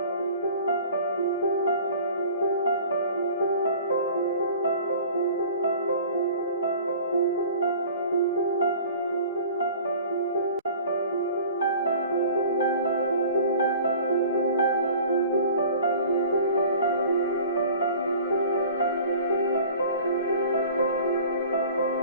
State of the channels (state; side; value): inverted; both; correlation -0.45